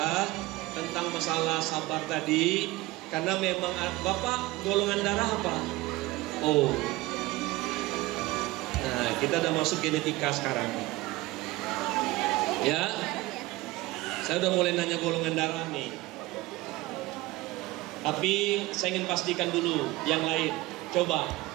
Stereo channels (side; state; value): left; quieter; 19.7 dB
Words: tentang masalah sabar tadi. Karena memang Bapak golongan darah apa? Oh. Nah kita udah masuk genetika sekarang. Ya, saya udah mulai nanya golongan darah nih. Tapi saya ingin pastikan dulu yang lain. Coba,